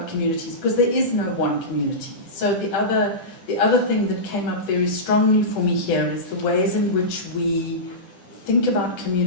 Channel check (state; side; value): late; right; 10 ms